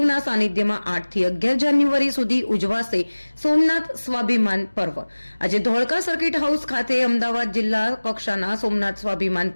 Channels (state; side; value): inverted; both; correlation -1.00